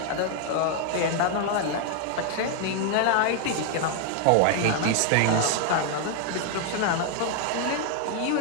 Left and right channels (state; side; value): different; both; correlation 0.00